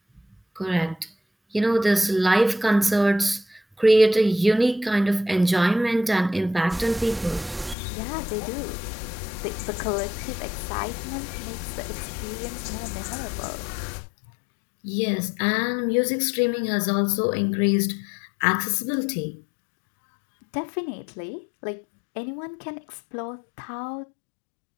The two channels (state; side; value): drops out; right; at 7.8 s